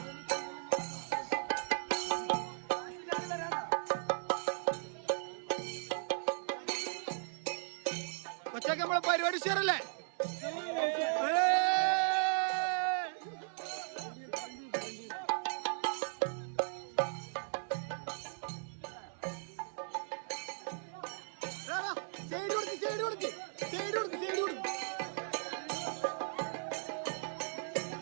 കൊച്ചൊക്കെ നമ്മളെ പരിപാടി ഷെയറല്ലേ?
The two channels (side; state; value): left; silent; 53 dB below the other